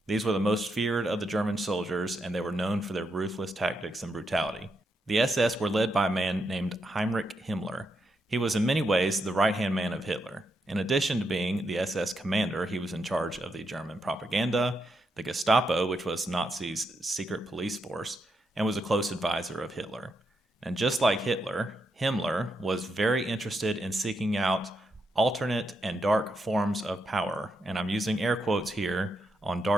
These were the most feared of the German soldiers, and they were known for their ruthless tactics and brutality. The SS were led by a man named Heinrich Himmler. He was in many ways the right-hand man of Hitler. In addition to being the SS commander, he was in charge of the German propaganda, the Gestapo, which was Nazis' secret police force, and was a close advisor of Hitler. And just like Hitler, Himmler was very interested in seeking out alternate and dark forms of power. And I'm using air quotes here on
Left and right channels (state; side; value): normal; both; correlation 0.82